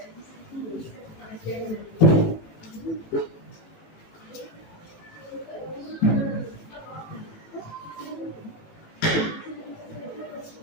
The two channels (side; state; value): right; late; 18 ms